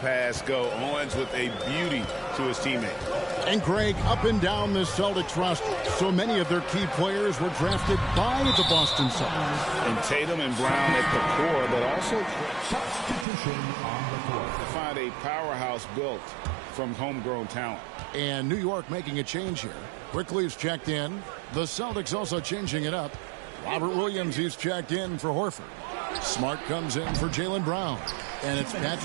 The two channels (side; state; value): left; drops out; at 13.2 s